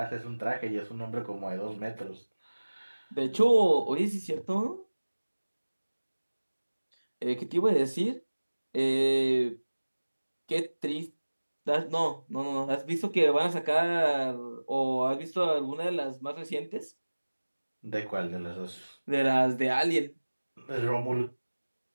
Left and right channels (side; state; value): both; inverted; correlation -1.00